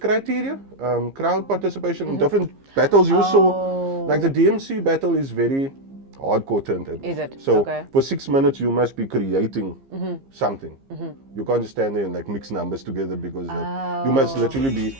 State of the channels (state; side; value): late; left; 15 ms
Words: crowd participation in different battles. You saw, like the DMC battle is very hardcore turntable. Is it? So for 6 minutes you must be creating something. You can't just stand there and like mix numbers together because you must literally be